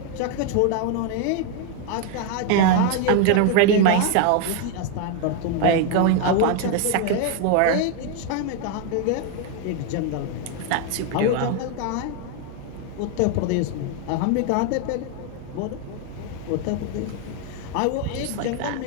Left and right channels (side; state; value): both; different; correlation 0.01